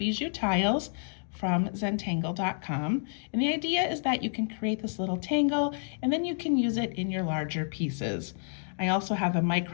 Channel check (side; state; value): right; silent; digital silence